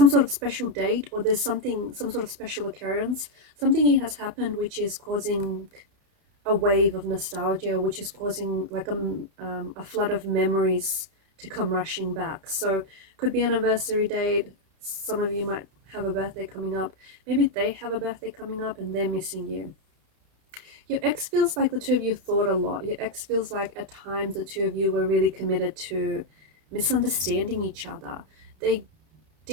sort of special date, or there's some sort of special occurrence. Something has happened which is causing a wave of nostalgia, which is causing like a flood of memories to come rushing back. So could be an anniversary date. Some of you might have a birthday coming up. Maybe they have a birthday coming up and they're missing you. Your ex feels like the two of you thought a lot. Your ex feels like at times the two of you were really committed to misunderstanding each other. They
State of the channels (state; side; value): late; left; 31 ms